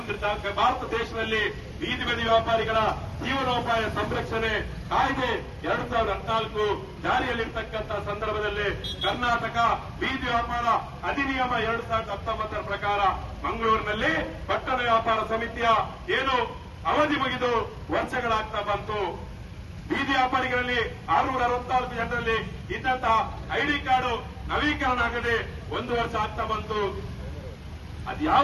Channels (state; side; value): identical; both; correlation 1.00